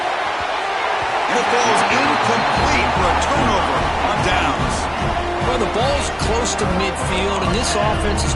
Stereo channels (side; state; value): both; identical; correlation 1.00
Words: And it falls incomplete for a turnover on downs. Well, the ball's close to midfield, and this offense is